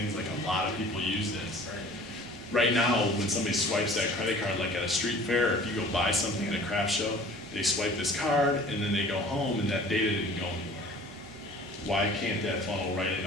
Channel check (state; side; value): normal; both; correlation 0.47